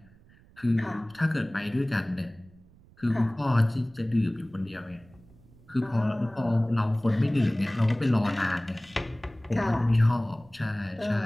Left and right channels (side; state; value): right; noise; rumble, 26 dB below the sound